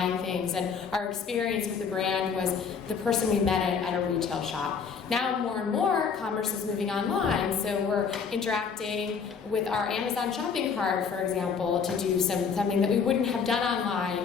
things, and our experience with the brand was the person we met at a retail shop. Now more and more commerce is moving online, so we're interacting with our Amazon shopping cart, for example, to do something that we wouldn't have done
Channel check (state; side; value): quieter; right; 6.1 dB